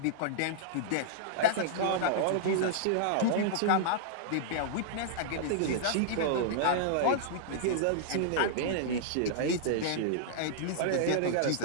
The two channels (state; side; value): different; both; correlation -0.02